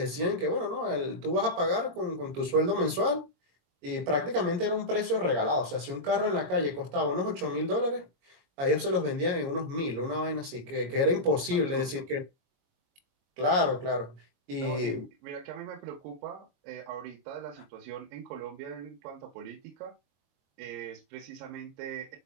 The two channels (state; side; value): late; left; 22 ms